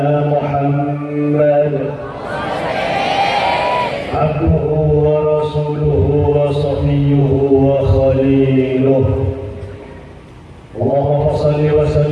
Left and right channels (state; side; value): identical; both; correlation 1.00